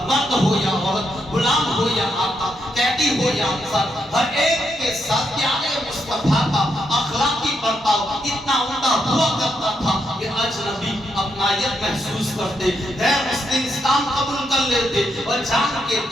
مرد ہو یا عورت، غلام ہو یا آقا، قیدی ہو یا انصار، ہر ایک کے ساتھ پیارے مصطفیٰ کا اخلاقی برتاؤ اتنا عمدہ ہوا کرتا تھا کہ اجنبی اپنائیت محسوس کرتے، غیر مسلم اسلام قبول کر لیتے اور جان کے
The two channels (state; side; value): normal; both; correlation 0.80